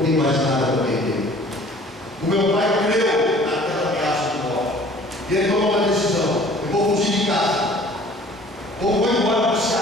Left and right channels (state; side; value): normal; both; correlation 0.51